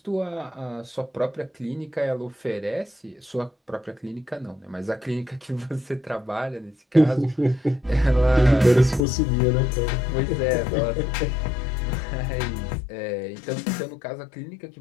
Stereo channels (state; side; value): drops out; right; at 9.1 s